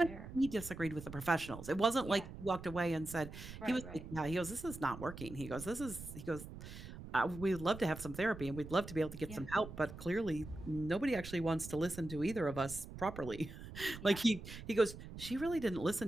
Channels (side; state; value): right; noise; rumble, 12 dB below the sound